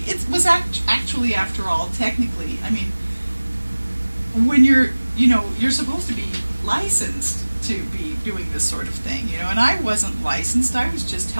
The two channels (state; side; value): inverted; both; correlation -1.00